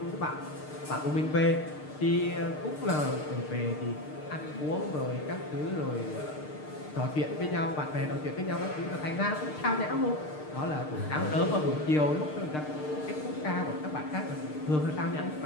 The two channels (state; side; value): late; right; 6.6 ms